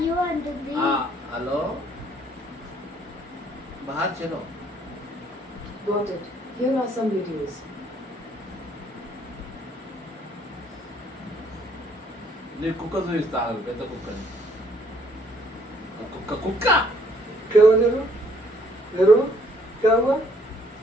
యు అంటుంది. హలో బాహర్ చలో Got it. Here are some videos. నీ కుక్క చూపిస్తా పెద్ద కుక్కని కుక్క కుక్క क्या हुआ नेहरू नेहरू क्या हुआ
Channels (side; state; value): both; normal; correlation 0.64